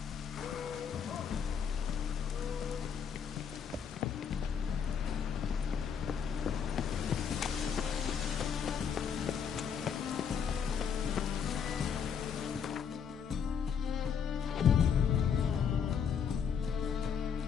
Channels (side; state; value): right; quieter; 7.1 dB